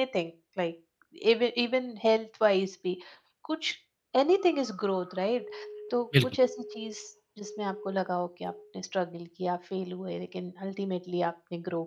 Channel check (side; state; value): both; identical; correlation 1.00